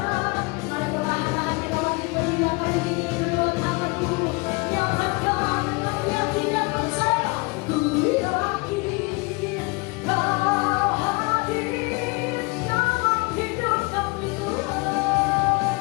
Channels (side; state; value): right; quieter; 28.2 dB